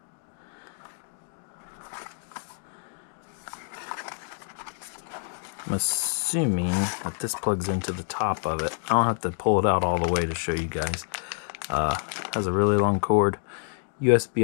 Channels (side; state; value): right; silent; 60 dB below the other